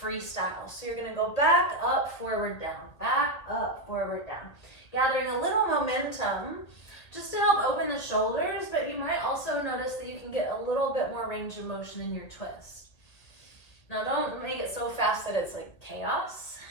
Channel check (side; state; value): right; late; 2.0 ms